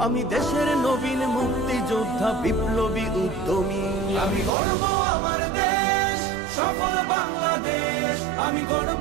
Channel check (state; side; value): drops out; left; at 4.5 s